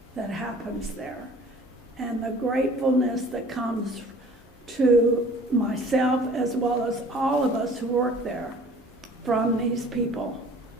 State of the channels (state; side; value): normal; both; correlation 0.49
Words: that happens there, and the gratefulness that comes to myself as well as all of us who work there from these people